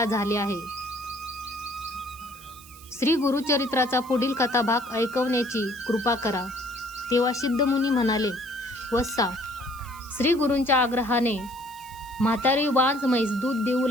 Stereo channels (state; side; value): noise; right; hiss, 20 dB below the sound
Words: झाले आहे. श्री गुरुचरित्राचा पुढील कथाभाग ऐकवण्याची कृपा करा. तेव्हा सिद्धमुनी म्हणाले, वत्सा, श्री गुरूंच्या आग्रहाने म्हातारी वांज म्हैस दूध देऊ